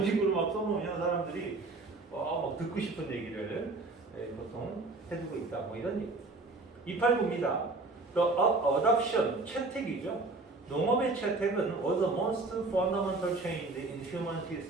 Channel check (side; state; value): left; quieter; 3.4 dB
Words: 식으로 막 써놓으면 사람들이 막 듣고 싶은 얘기를 보통 해주고 있다. 뭐 이런 얘기. 289입니다. The adoption, 채택이죠. 농업의 채택은 was the most fundamental change in human